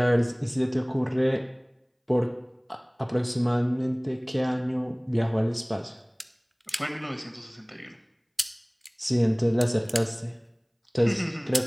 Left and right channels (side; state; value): both; identical; correlation 1.00